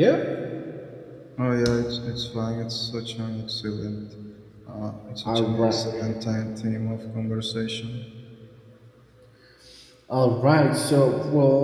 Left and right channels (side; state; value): both; identical; correlation 1.00